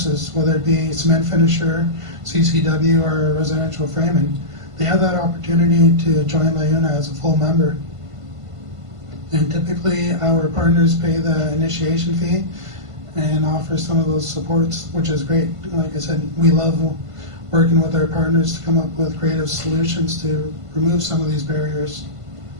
whether it be cement finisher, CCW, or residential framing, they have that opportunity to join LIUNA as a full member. And typically our partners pay the initiation fee and offer some of those supports, which is great. Like I said, we love working with our partners to come up with creative solutions to remove some of these barriers.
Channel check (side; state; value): left; late; 1.5 ms